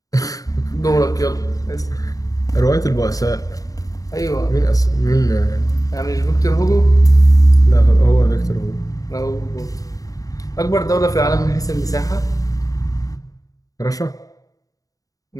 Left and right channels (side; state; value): right; late; 0.17 ms